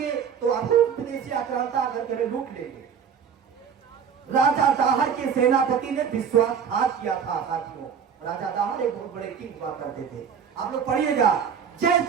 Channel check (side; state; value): left; quieter; 7.3 dB